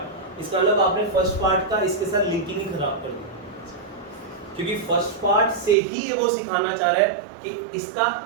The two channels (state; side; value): drops out; left; at 5.8 s